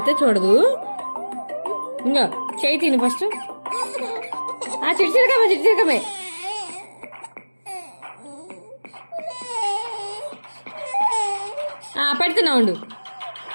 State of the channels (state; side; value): inverted; both; correlation -1.00